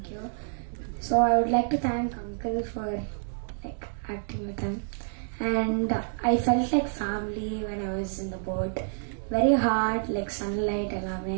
you. So I would like to thank Uncle for like acting with him, and I felt like family when I was in the boat. Very hard, like sunlight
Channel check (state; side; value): silent; left; digital silence